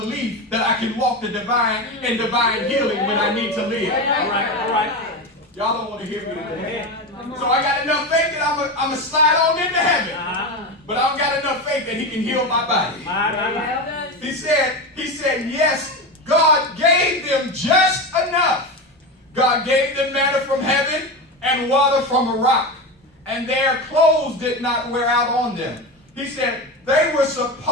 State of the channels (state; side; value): normal; both; correlation 0.20